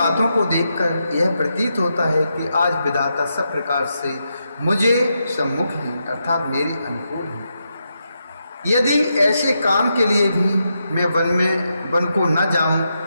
को देखकर यह प्रतीत होता है कि आज विधाता सब प्रकार से मुझे सम्मुख है, अर्थात मेरी अनुकूल है। यदि ऐसे काम के लिए भी मैं वन को न जाऊं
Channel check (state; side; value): inverted; both; correlation -0.84